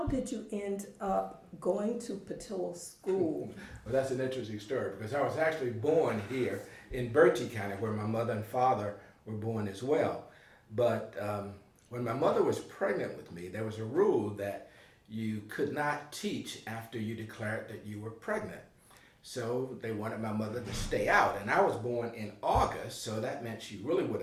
did you end up going to Patillo School? Well, that's an interesting story because I was actually born here in Berkeley County where my mother and father were born as well. But when my mother was pregnant with me, there was a rule that you could not teach after you declared that you were pregnant. So they wanted my mother to stay out. And I was born in August, so that meant she really would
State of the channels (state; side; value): identical; both; correlation 1.00